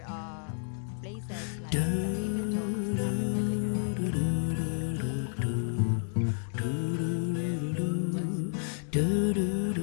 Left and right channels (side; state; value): right; silent; digital silence